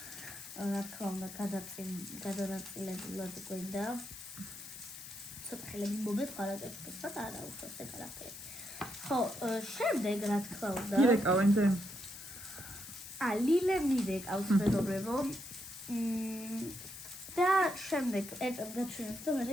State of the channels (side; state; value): left; noise; hiss, 12 dB below the sound